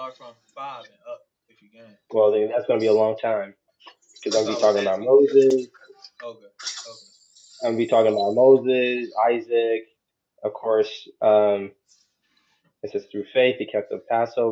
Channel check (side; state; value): both; identical; correlation 1.00